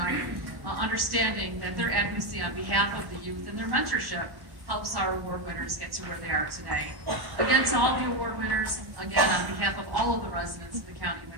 understanding that their advocacy on behalf of the youth and their mentorship helps our award winners get to where they are today. Again, to all the award winners, again, on behalf of all of the residents of the County of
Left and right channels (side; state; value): left; late; 1.1 ms